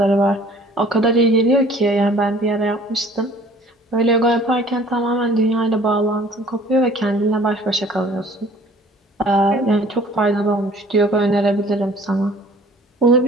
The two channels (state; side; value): normal; both; correlation 0.52